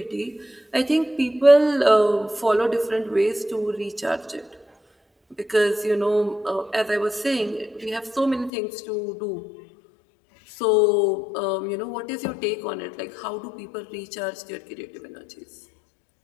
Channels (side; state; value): right; drops out; at 8.5 s